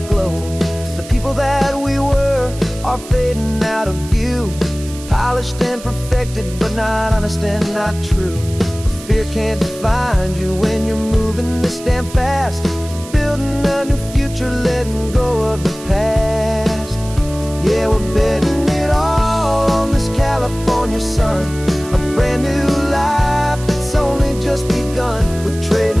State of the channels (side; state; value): right; noise; hiss, 16 dB below the sound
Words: glow. The people that we were are fading out of view. polished and perfected, but not honest and not true. Fear can't find you when you're moving this damn fast, building a new future, letting go of the past. Yeah, we're betting it all on this California sun, a brand new life that's only just begun. We're